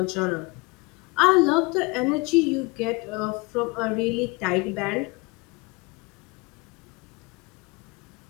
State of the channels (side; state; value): right; quieter; 26.7 dB